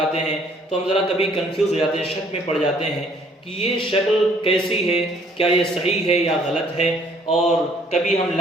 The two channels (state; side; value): normal; both; correlation 0.61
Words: ہیں، تو ہم ذرا کبھی کنفیوز ہو جاتے ہیں، شک میں پڑ جاتے ہیں کہ یہ شکل کیسی ہے، کیا یہ صحیح ہے یا غلط ہے، اور کبھی ہم